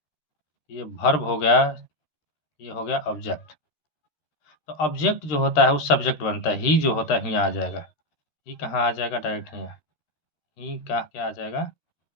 ये वर्ब हो गया, ये हो गया ऑब्जेक्ट। तो ऑब्जेक्ट जो होता है वो सब्जेक्ट बनता है, ही जो होता है यहाँ आ जाएगा, ही कहाँ आ जाएगा, डायरेक्ट यहाँ, ही का क्या आ जाएगा,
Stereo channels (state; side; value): late; right; 13 ms